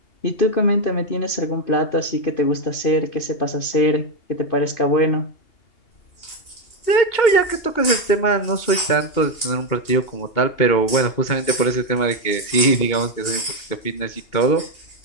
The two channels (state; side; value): late; right; 2.8 ms